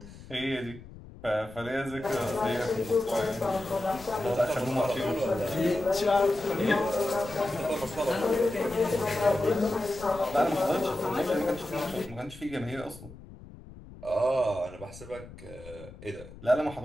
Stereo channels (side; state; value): left; noise; rumble, 17 dB below the sound